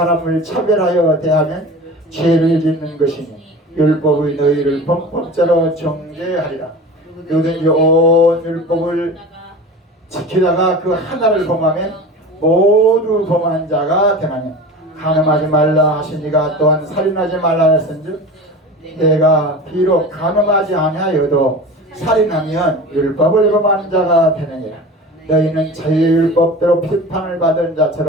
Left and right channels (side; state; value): both; normal; correlation 0.34